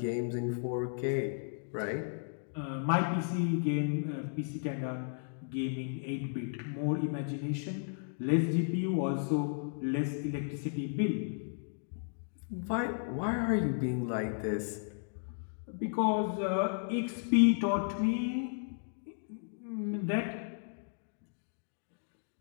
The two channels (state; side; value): silent; right; digital silence